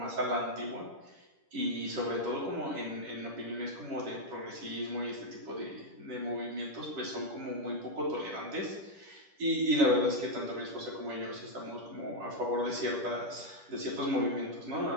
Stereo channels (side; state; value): left; late; 10 ms